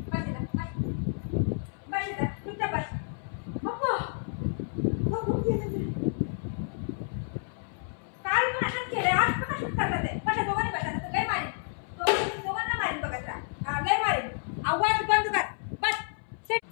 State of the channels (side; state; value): right; silent; 58 dB below the other